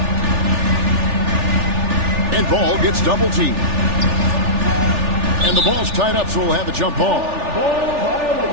And Ball gets double teamed. And the ball's tied up, so we'll have a jump ball.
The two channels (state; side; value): late; left; 3.4 ms